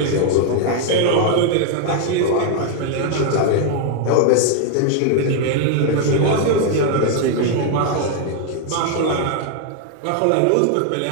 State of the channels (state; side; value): different; both; correlation 0.00